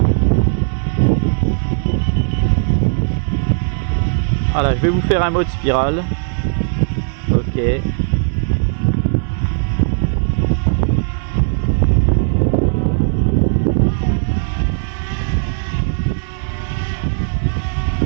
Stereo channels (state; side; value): silent; left; digital silence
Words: Voilà, je vais vous faire un mode spirale. Ok.